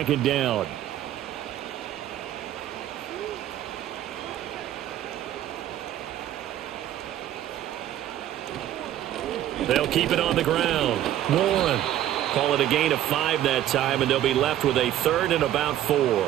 down. They'll keep it on the ground. Warren. Call it a gain of 5 that time, and they'll be left with a 3rd and about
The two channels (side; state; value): left; quieter; 12.4 dB